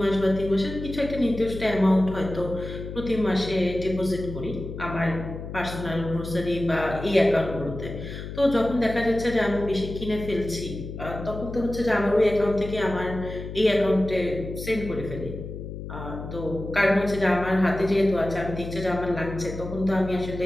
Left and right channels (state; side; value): noise; left; hum, 9 dB below the sound